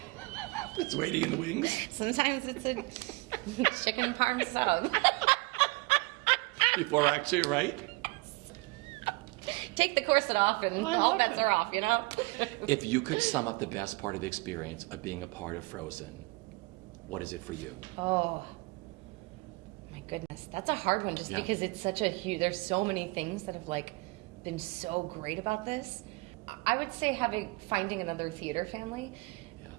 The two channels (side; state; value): left; quieter; 25.8 dB